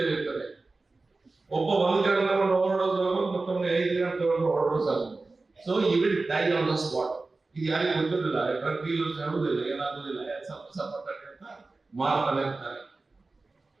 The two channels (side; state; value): left; quieter; 3.5 dB